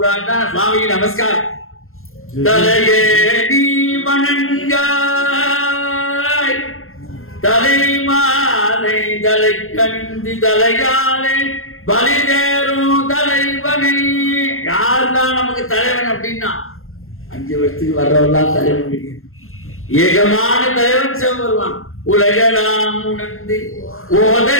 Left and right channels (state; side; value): late; right; 0.61 ms